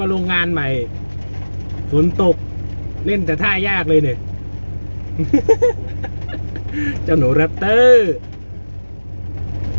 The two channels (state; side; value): inverted; both; correlation -1.00